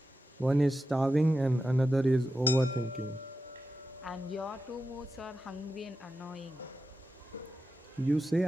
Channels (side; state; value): both; normal; correlation 0.90